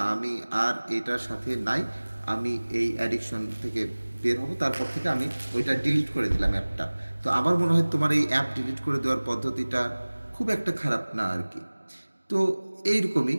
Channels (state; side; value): inverted; both; correlation -1.00